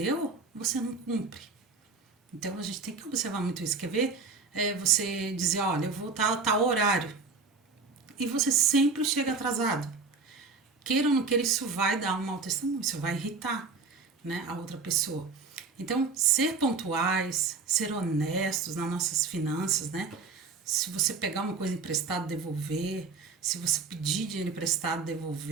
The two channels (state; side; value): quieter; left; 4.6 dB